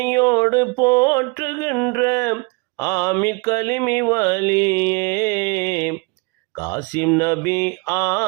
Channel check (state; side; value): quieter; left; 29.3 dB